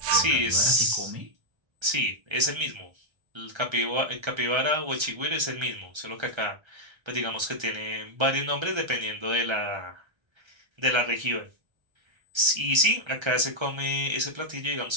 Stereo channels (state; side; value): late; left; 1.3 ms